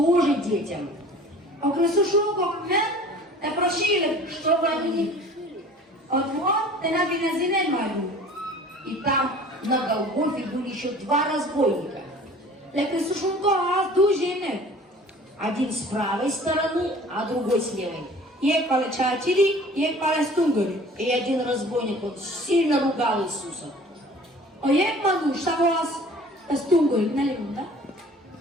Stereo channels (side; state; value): both; normal; correlation 0.47